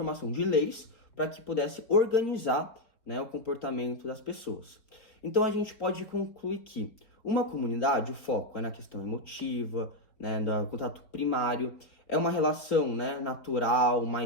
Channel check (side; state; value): right; late; 4.4 ms